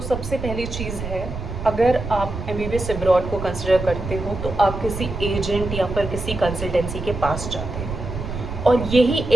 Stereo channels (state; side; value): noise; right; rumble, 7 dB below the sound